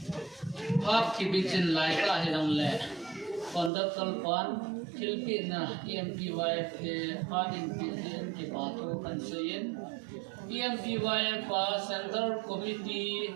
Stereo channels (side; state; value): left; drops out; at 3.7 s